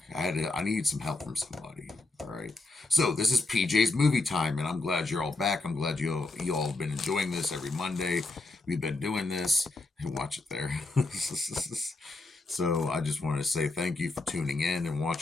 I need some help from somebody. All right. So this is PJ's movie time, and I'm glad you're all back. I'm glad you all have been enjoying this every Monday. We've been doing this. Watch it there. So I just wanted to say thank you for tuning in and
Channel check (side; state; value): right; quieter; 3.1 dB